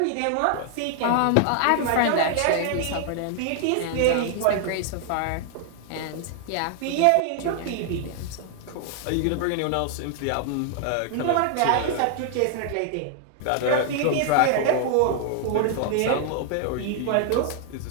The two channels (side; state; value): both; different; correlation 0.00